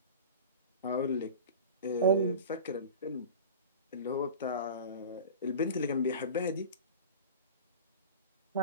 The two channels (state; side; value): inverted; both; correlation -0.34